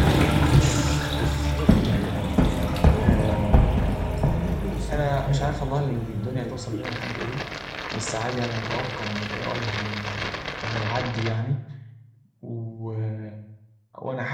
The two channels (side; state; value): both; identical; correlation 1.00